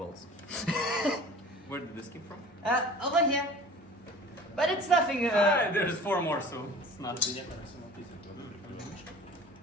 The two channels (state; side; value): normal; both; correlation 0.43